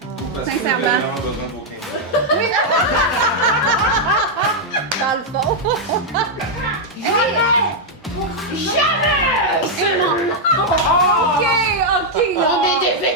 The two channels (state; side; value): normal; both; correlation -0.03